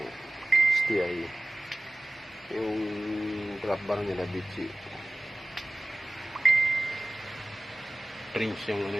STI. Yung grab bar nila Bitchy. Prince yung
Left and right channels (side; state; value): both; normal; correlation 0.96